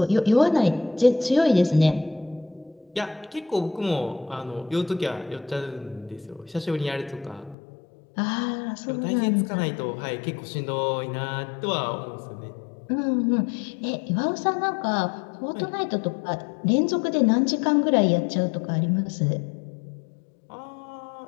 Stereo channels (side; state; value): right; drops out; at 7.6 s